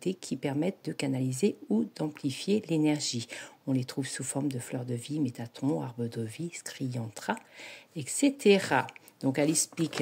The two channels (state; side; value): identical; both; correlation 1.00